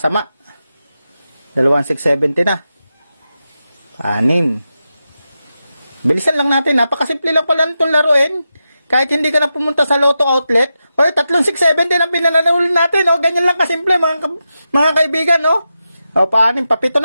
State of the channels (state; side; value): inverted; both; correlation -0.89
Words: 2,670 na. 6. Bilisan lang natin. Napakasimple lang pala itong laruin. Kahit hindi ka na pumunta sa Lotto Outlet. Oy, 3,670 ang pinananalo natin. O, ganyan lang kasimple mga kaibigan. O, 6. Papito